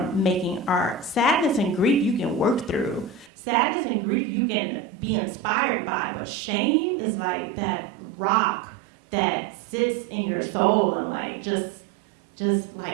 making art. Sadness and grief you can work through. Sadness and grief you can be inspired by, but shame is like that rock that sits in your soul and like just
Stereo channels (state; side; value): drops out; left; at 3.3 s